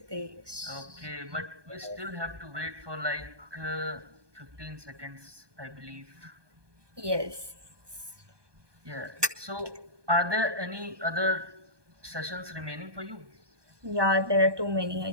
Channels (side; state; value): left; late; 1.2 ms